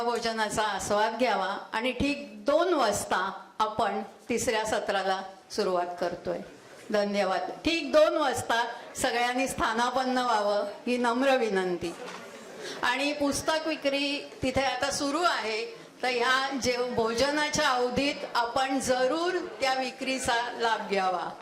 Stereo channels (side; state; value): both; identical; correlation 1.00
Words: आस्वाद घ्यावा आणि ठीक 2 वाजता आपण 3ऱ्या सत्राला सुरुवात करतोय. धन्यवाद. ठीक 2 वाजता सगळ्यांनी स्थानापन्न व्हावं ही नम्र विनंती. आणि पुस्तक विक्री तिथे आता सुरू आहे, तर ह्या भोजनाच्या अवधीत आपण जरूर त्या विक्रीचा लाभ घ्यावा,